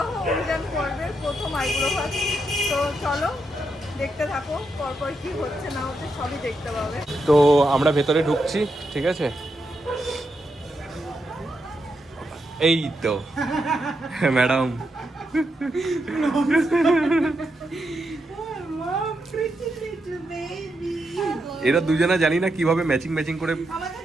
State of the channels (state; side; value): normal; both; correlation 0.83